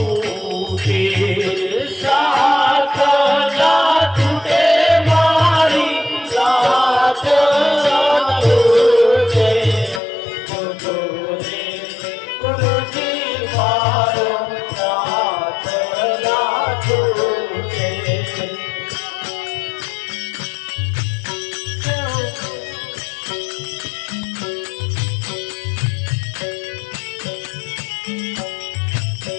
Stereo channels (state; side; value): drops out; right; at 10.0 s